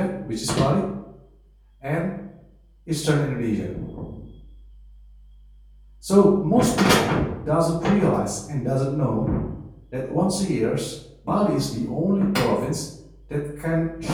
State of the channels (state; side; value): identical; both; correlation 1.00